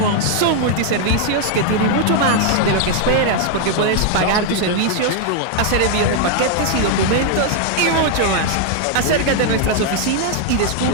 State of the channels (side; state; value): both; different; correlation 0.00